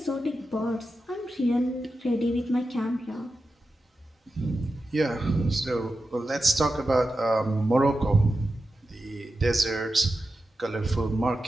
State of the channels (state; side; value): normal; both; correlation 0.91